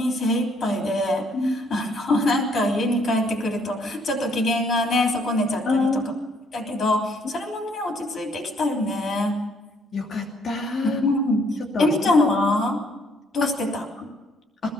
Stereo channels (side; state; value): both; normal; correlation 0.66